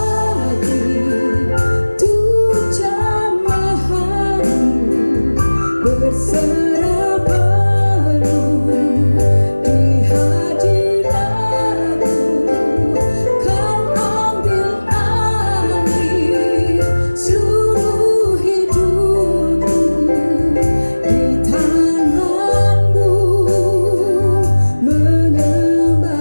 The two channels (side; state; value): both; inverted; correlation -1.00